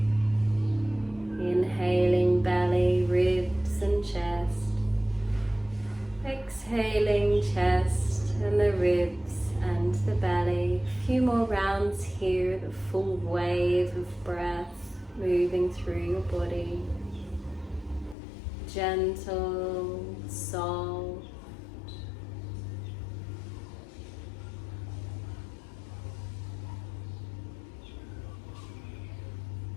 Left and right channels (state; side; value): drops out; right; at 18.2 s